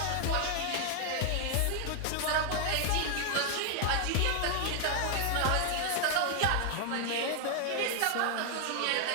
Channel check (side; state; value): both; different; correlation 0.00